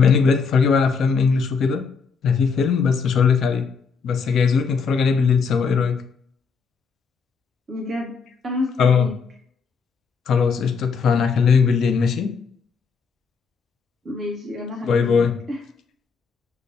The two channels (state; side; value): quieter; right; 5.5 dB